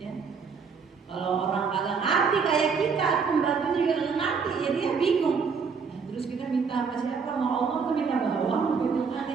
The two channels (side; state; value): left; quieter; 5.6 dB